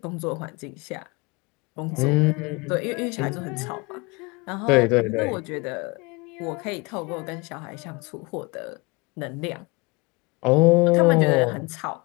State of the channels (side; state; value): right; quieter; 26.4 dB